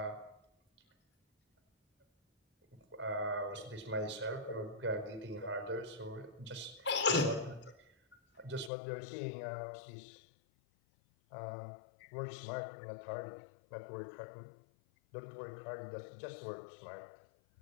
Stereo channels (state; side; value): drops out; right; at 8.7 s